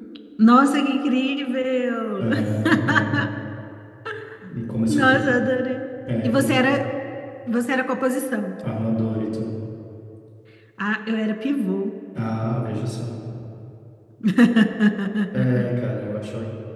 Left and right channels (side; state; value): both; identical; correlation 1.00